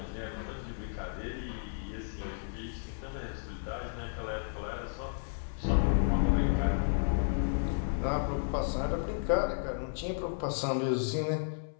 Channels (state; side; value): silent; right; 56 dB below the other